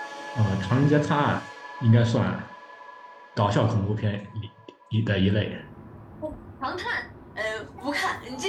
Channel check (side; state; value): both; identical; correlation 1.00